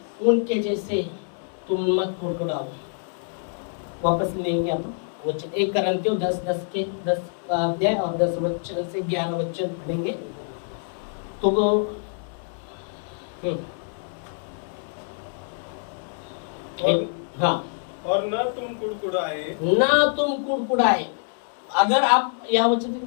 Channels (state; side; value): silent; right; digital silence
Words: उनके जैसे तुम मत कुड़कुड़ाओ। वापस लेंगे आप वचन 1 कुरिन्थियों 10:10 के 10 अध्याय और 10 वचन से 11 वचन पढ़ेंगे तो वो हाँ। और न तुम कुड़कुड़ाए। अगर आप यहाँ वचन,